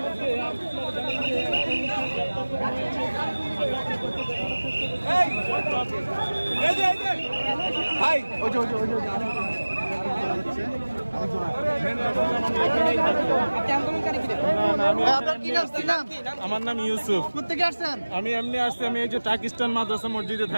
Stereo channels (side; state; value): both; inverted; correlation -1.00